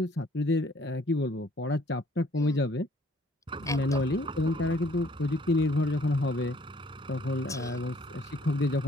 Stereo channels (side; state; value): both; normal; correlation 0.60